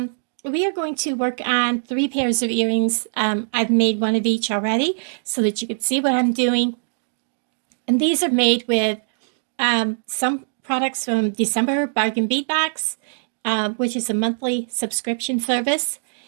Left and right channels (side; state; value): left; silent; digital silence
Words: We are going to work on 3 pairs of earrings. I've made one of each already so that you can see what I'm doing. And these are made with some products from December Bargain Bead Box, which is a monthly subscription service.